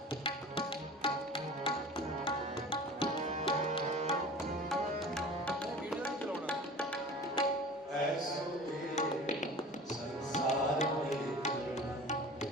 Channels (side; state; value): both; normal; correlation 0.39